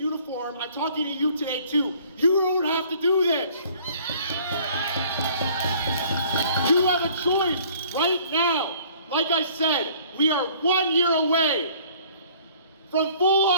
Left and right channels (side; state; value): both; inverted; correlation -0.54